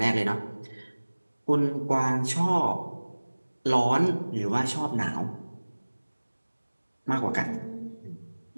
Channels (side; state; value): both; inverted; correlation -1.00